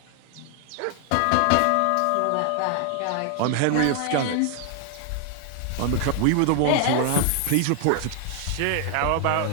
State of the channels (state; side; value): different; both; correlation 0.00